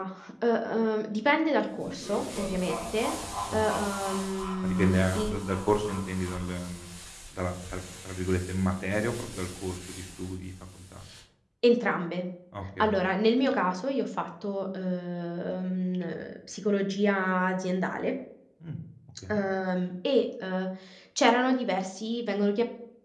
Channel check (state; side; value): identical; both; correlation 1.00